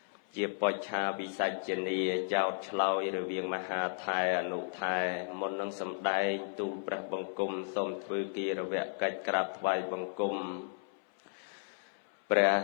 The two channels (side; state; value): right; silent; 55 dB below the other